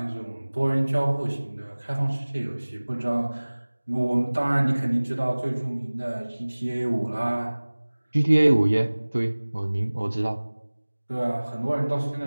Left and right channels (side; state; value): both; inverted; correlation -1.00